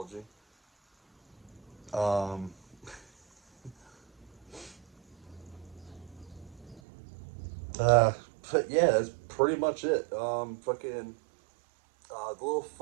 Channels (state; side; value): drops out; left; at 6.8 s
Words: Um, uh, but yeah, that's pretty much it. Fucking the little